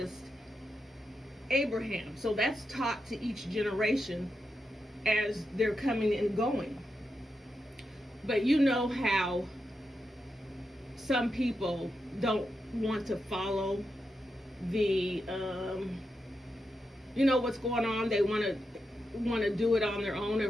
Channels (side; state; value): both; normal; correlation 0.86